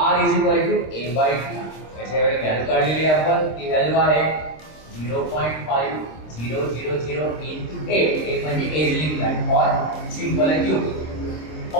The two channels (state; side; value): late; right; 26 ms